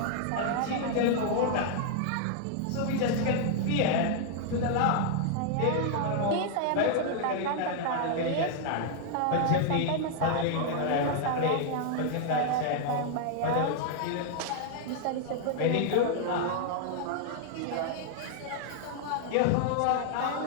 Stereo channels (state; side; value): different; both; correlation 0.00